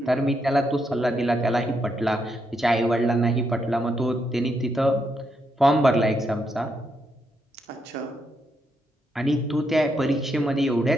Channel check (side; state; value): both; normal; correlation 0.79